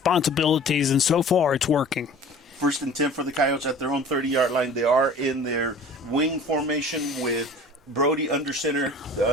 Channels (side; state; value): both; normal; correlation 0.44